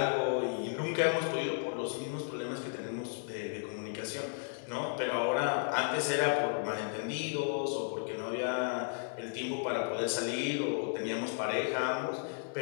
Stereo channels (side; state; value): right; silent; digital silence